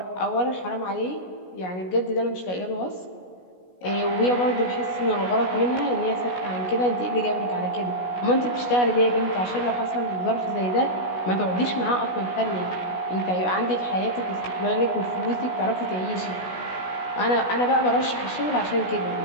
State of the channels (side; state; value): right; late; 16 ms